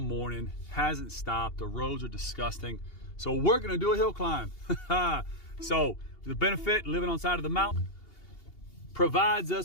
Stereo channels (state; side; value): late; right; 2.8 ms